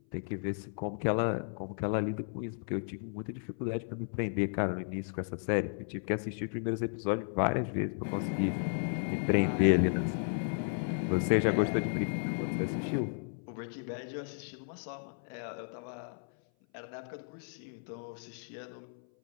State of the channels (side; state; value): right; silent; 55 dB below the other